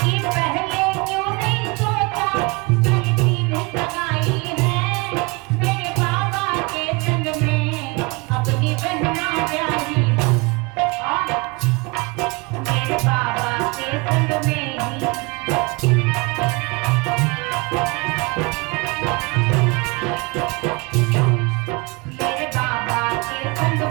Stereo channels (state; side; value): quieter; left; 27.3 dB